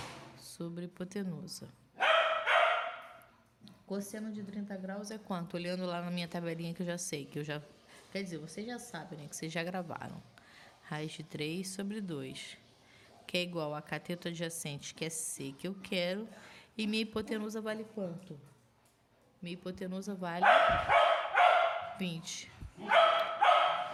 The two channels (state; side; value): identical; both; correlation 1.00